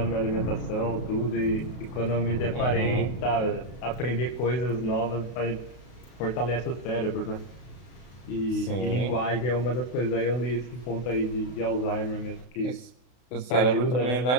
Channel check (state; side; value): late; right; 32 ms